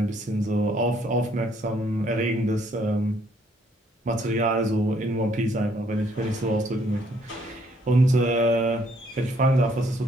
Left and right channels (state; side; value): normal; both; correlation 0.67